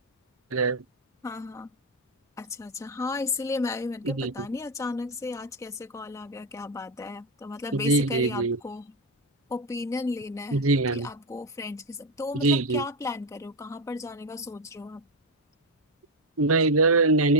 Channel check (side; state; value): both; normal; correlation 0.07